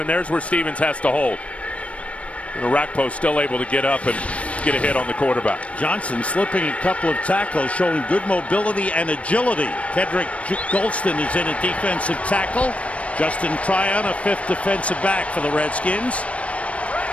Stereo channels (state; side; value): late; right; 0.063 ms